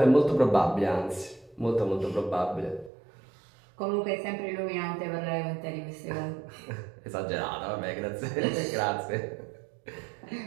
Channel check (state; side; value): drops out; left; at 2.9 s